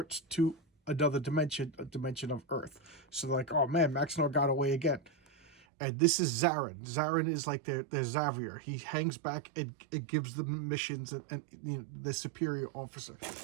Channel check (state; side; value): drops out; left; at 5.5 s